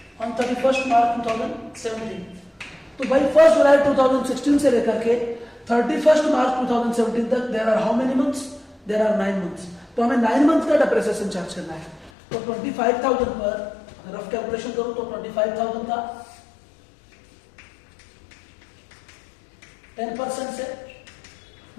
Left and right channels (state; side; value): drops out; right; at 12.1 s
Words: ऑन 31 मार्च 2017। तो भाई 1 जुलाई 2016 से लेकर के 31 मार्च 2017 तक there are how many months? There are 9 months. तो हमें 9 मंथ का डेप्रिसिएशन चार्ज करना है। तो 25,000 पर रफ कैलकुलेशन करूं तो 25,000 का 10% से